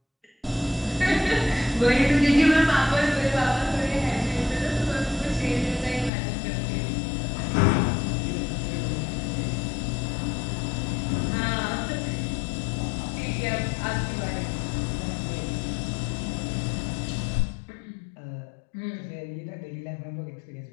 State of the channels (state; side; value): drops out; right; at 6.1 s